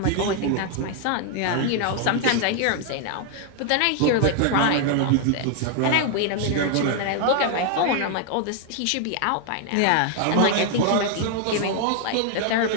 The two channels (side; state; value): both; different; correlation 0.00